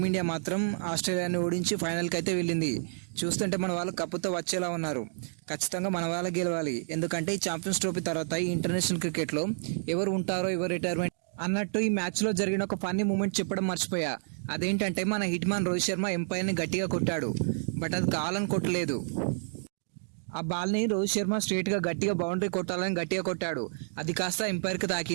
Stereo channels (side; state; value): left; silent; digital silence